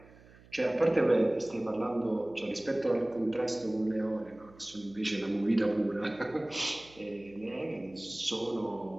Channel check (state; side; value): noise; right; hum, 24 dB below the sound